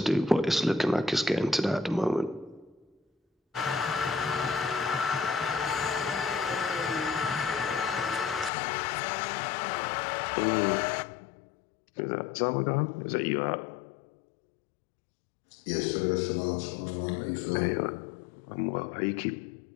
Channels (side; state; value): right; drops out; at 8.5 s